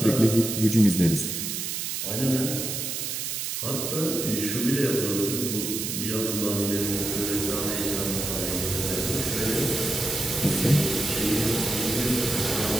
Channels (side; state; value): right; noise; hiss, 3 dB below the sound